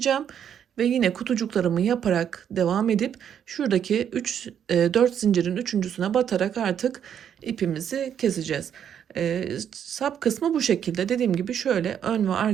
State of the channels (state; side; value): quieter; left; 8.9 dB